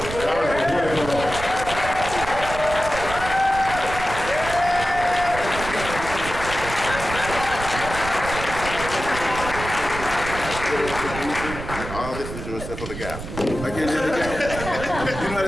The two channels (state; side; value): noise; right; rumble, 9 dB below the sound